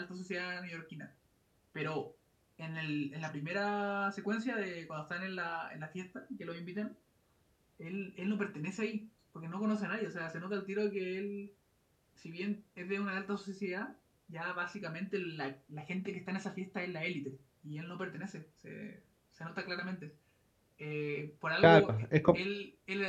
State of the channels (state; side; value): identical; both; correlation 1.00